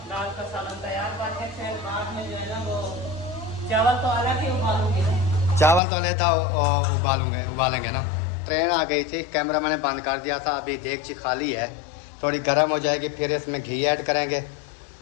सालन तैयार करके फिर बाद में जो है ना वो चावल तो अलग ही उबालूंगी ना। चावल तो लेता उबालेंगे ना। ट्रेन आ गई थी, कैमरा मैंने बंद कर दिया था। अभी देगची खाली है, थोड़ी गर्म हो जाएगी, फिर इसमें घी ऐड करेंगे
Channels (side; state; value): right; drops out; at 5.8 s